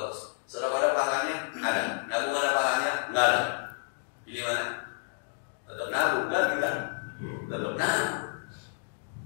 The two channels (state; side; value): silent; right; 58 dB below the other